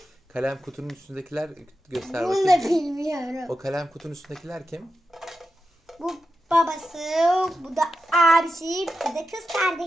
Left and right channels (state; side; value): normal; both; correlation 0.90